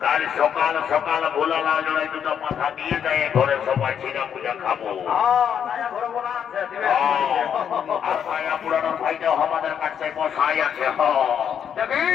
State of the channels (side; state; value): right; quieter; 8.3 dB